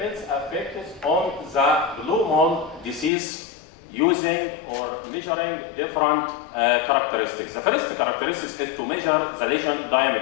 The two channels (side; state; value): right; drops out; at 3.1 s